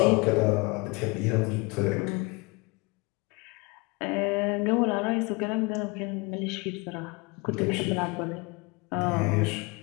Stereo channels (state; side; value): quieter; right; 27.5 dB